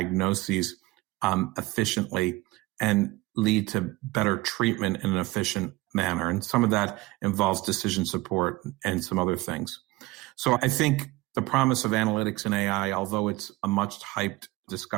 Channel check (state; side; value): quieter; left; 20.2 dB